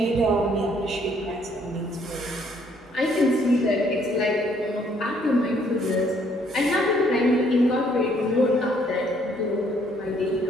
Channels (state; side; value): normal; both; correlation 0.65